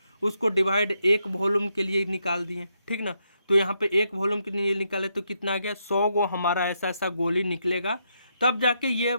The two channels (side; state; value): both; inverted; correlation -0.79